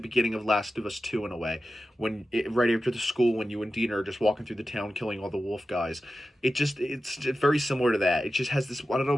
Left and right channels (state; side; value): normal; both; correlation 0.92